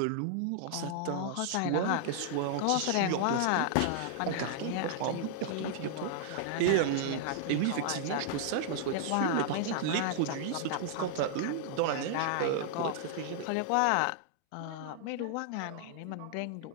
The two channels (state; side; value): different; both; correlation -0.01